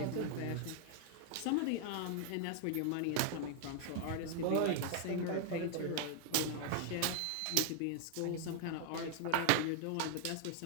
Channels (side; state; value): both; different; correlation 0.00